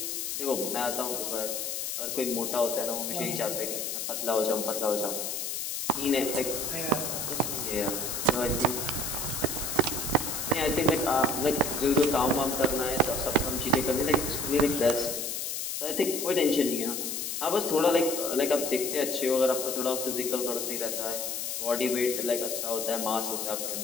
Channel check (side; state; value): left; noise; hiss, 3 dB below the sound